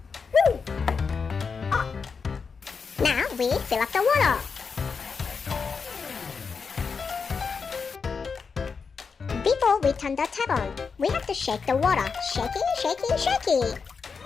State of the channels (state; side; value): quieter; right; 5.4 dB